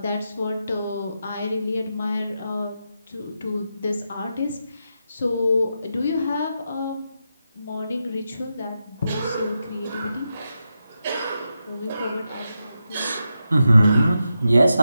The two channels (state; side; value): inverted; both; correlation -0.87